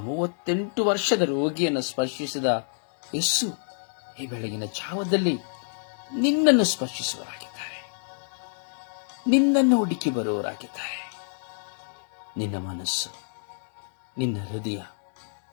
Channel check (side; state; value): right; silent; digital silence